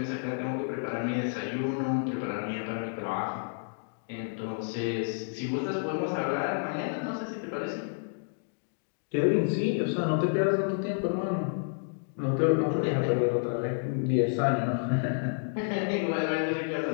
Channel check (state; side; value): silent; right; digital silence